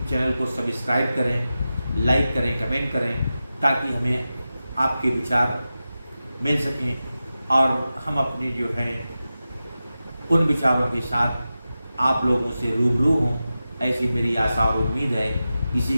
चैनल को सब्सक्राइब करें, लाइक करें, कमेंट करें, ताकि हमें आपके विचार मिल सकें और हम अपने जो है उन विचारों के साथ आप लोगों से रूबरू हों, ऐसी मेरी आशा और उम्मीद है। इसी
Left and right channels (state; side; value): inverted; both; correlation -0.93